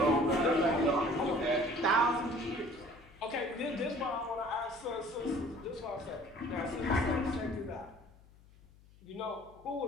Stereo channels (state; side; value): noise; left; hum, 25 dB below the sound